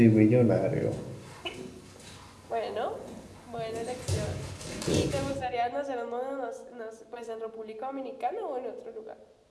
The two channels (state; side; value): identical; both; correlation 1.00